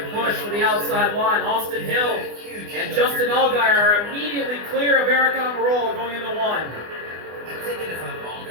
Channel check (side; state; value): left; late; 24 ms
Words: push for the outside line. Austin Hill and Justin Allgaier are immediately clear of Aric Almirola going into 1. I'm thinking if I'm